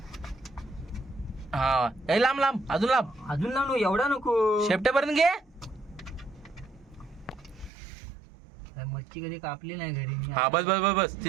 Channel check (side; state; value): left; drops out; at 7.7 s